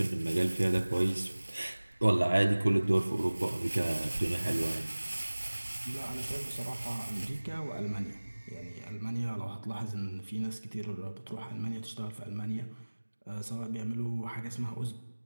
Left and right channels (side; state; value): both; inverted; correlation -1.00